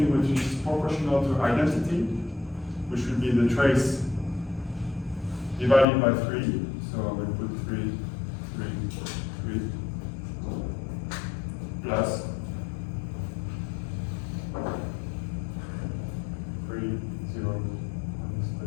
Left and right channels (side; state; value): right; drops out; at 5.9 s